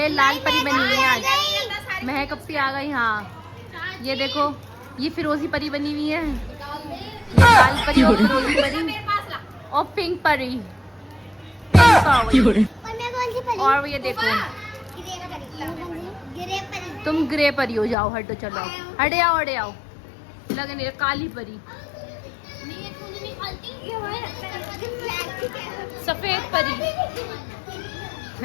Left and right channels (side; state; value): right; drops out; at 17.9 s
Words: लाल परी बनी है आज, महक अपी आ गई। हाँ ये देखो ये फिरोजी परी बनी हुई है, ये लाल परी और फिरोजी परी और पिंक परी, पिंक पावर। और ये देखो तुम ग्रे परी हो जाओ, हटो चलो, हटे आओ, हटे आओ। लगने काली परी, सफेद परी।